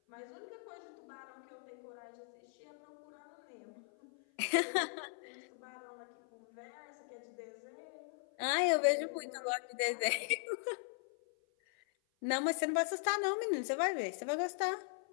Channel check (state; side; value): silent; right; 51 dB below the other